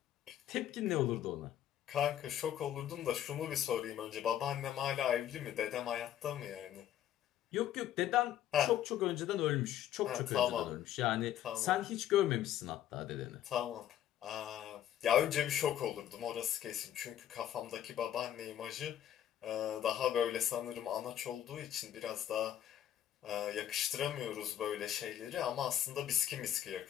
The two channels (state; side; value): quieter; right; 11.2 dB